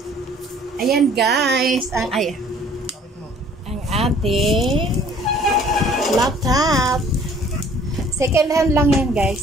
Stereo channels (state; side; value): normal; both; correlation 0.55